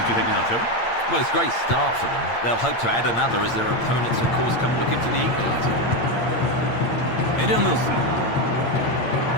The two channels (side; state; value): right; late; 8.7 ms